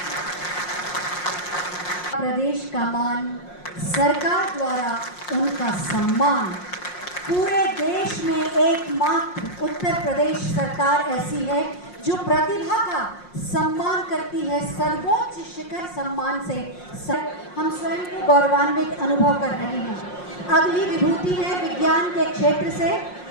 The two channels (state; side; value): late; right; 5.6 ms